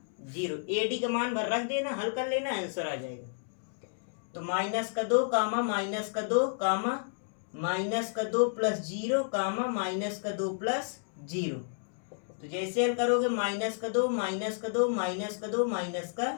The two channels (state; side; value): silent; right; digital silence